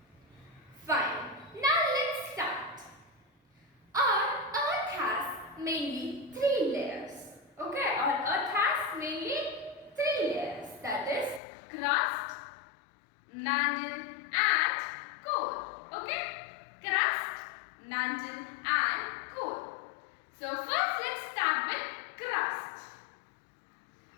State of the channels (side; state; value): right; drops out; at 11.4 s